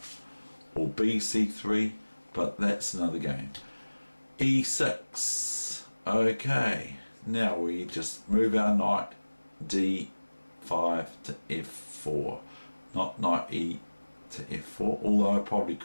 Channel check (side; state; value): both; inverted; correlation -1.00